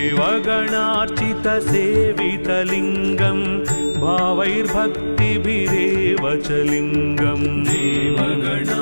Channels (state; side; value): inverted; both; correlation -1.00